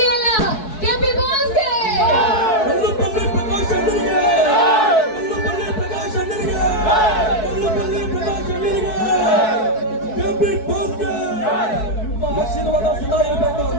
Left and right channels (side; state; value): right; late; 4.6 ms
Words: ಅಲ್ಲ, ಕೆಪಿ ಬಾಸ್ಗೆ ಕಲ್ಲುಪಲ್ಲಿ ಪ್ರಕಾಶ್ ಅಣ್ಣನಿಗೆ, ಕಲ್ಲುಪಲ್ಲಿ ಪ್ರಕಾಶ್ ಅಣ್ಣನಿಗೆ, ಕಲ್ಲುಪಲ್ಲಿ ಪ್ರಕಾಶ್ ಅಣ್ಣನಿಗೆ, ಕೆಪಿ ಬಾಸ್ಗೆ ನಿಮ್ಮ ಆಶೀರ್ವಾದ ಸದಾ ಇರಬೇಕು,